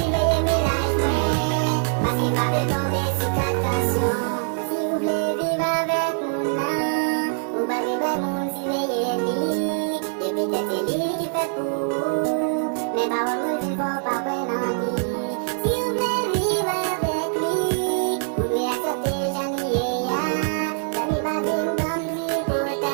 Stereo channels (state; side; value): silent; left; digital silence